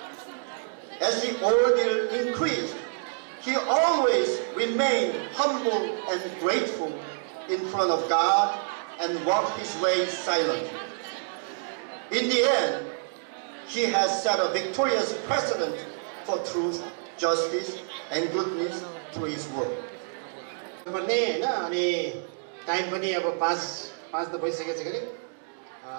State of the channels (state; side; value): silent; left; digital silence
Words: As the ordeal increased, he always remained humble and grateful in front of God and walked his way silently. In the end, he has set a victorious precedent for truth, justice, and goodness through his work. Time पनि अब पाँच त भइसकेछ गरे